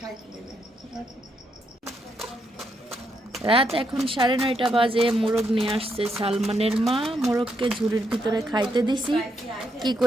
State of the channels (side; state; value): both; normal; correlation 0.79